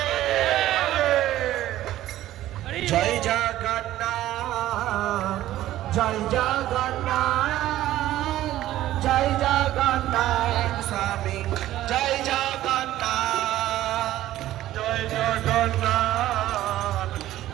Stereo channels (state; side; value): quieter; left; 14.2 dB